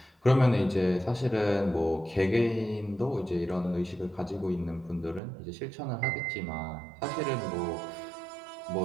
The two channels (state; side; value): drops out; left; at 5.2 s